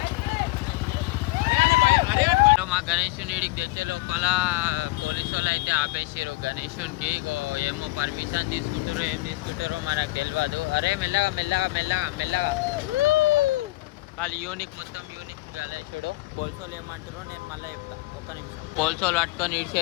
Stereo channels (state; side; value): quieter; right; 21.1 dB